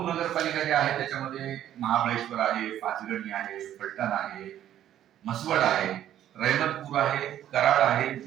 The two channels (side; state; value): left; quieter; 11.5 dB